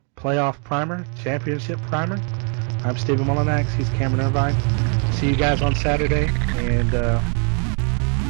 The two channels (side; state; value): left; quieter; 39.7 dB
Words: Playoff Primer, Championship Primer. I'm Stephen Mullenax. He's Cameron Irvine. See you guys on Saturday. And